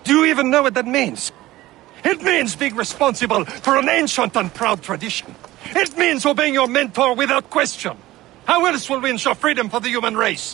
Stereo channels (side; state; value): left; quieter; 16.9 dB